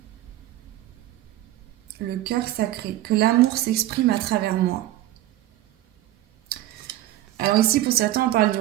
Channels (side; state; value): left; quieter; 14.6 dB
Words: Le cœur sacré, que l'amour s'exprime à travers moi. Alors ici, pour certains, on parle